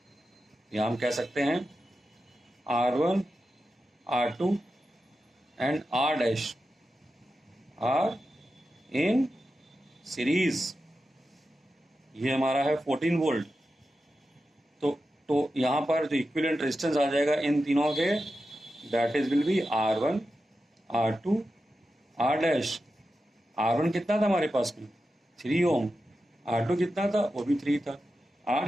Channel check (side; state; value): both; normal; correlation 0.90